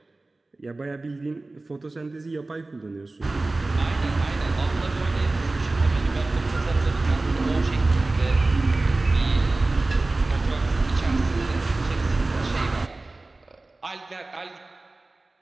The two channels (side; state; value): left; quieter; 3.2 dB